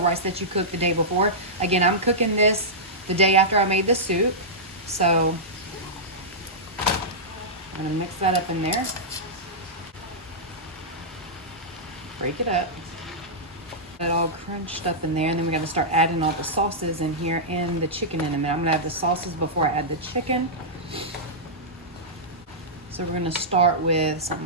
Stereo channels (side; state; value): both; normal; correlation -0.13